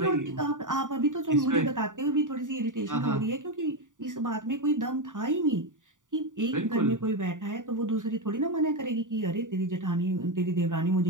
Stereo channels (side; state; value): left; late; 0.87 ms